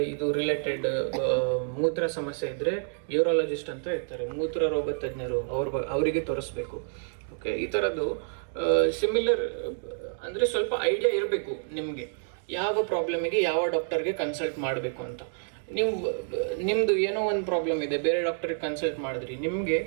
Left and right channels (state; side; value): silent; left; digital silence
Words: ಇದು ರಿಲೇಟೆಡ್ ಮೂತ್ರ ಸಮಸ್ಯೆ ಇದ್ದರೆ ಯೂರಾಲಜಿಸ್ಟ್ ಅಂತ ಇರ್ತಾರೆ, ಮೂತ್ರ ರೋಗ ತಜ್ಞರು, ಅವರಿಗೆ ತೋರಿಸ್ಬೇಕು. ಓಕೆ, ಈ ಥರದ್ದು ಸಿಮಿಲರ್ ಅಂದರೆ ಸ್ವಲ್ಪ ಐಡಿಯಾ ಇರಬೇಕು ನಿಮಗೆ ಯಾವ ಪ್ರಾಬ್ಲಮಿಗೆ ಯಾವ ಡಾಕ್ಟರ್ಗೆ ಕನ್ಸಲ್ಟ್ ಮಾಡಬೇಕು ಅಂತ. ನಿಮ್ಮದು ಏನೋ ಒಂದು ಪ್ರಾಬ್ಲಮ್ ಇದೆ, ಬೇರೆ ಡಾಕ್ಟರ್ಗೆ ಕನ್ಸಲ್ಟ್ ಮಾಡಿದ್ರಿ, ನಿಮಗೆ